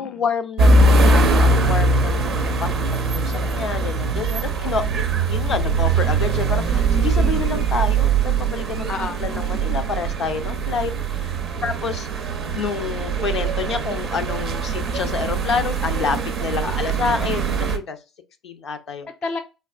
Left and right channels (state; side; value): normal; both; correlation 0.52